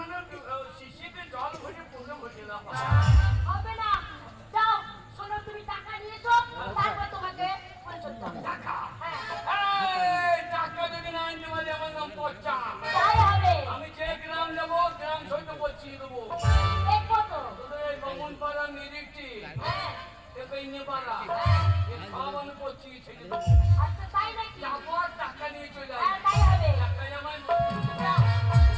শিশিতে জল ভরে পুরো ভরে দাও হবে না, যাও শোনো তুমি টাকা নিয়ে এসো, তারপর তোমাকে ফুলসজ্জা হবে। টাকা হ্যাঁ এই টাকা যদি না আনতে পারি আমার নাম পচ্চা তাই হবে। আমি যে গ্রাম যাবো গ্রাম সইতে পচিয়ে দেবো দেখবো তো। তোদের এই বামুন পাড়া নিরিখটি হ্যাঁ এ পাড়া এ সব আমি পচিয়ে ছেড়ে দেবো আচ্ছা তাই নাকি? যাবো আর টাকা নিয়ে চলে হ্যাঁ আসবো তাই হবে। টাকাই আমার যাও।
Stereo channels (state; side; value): identical; both; correlation 1.00